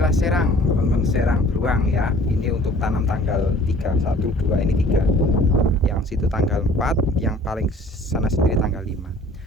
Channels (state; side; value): normal; both; correlation 0.51